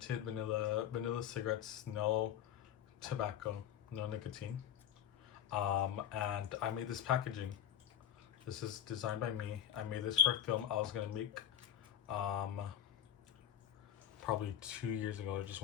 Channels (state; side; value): quieter; right; 10.6 dB